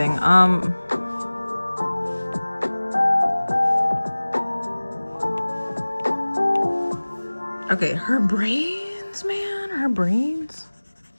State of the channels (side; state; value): both; inverted; correlation -1.00